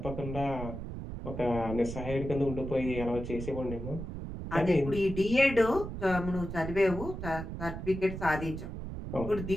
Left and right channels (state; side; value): noise; right; rumble, 7 dB below the sound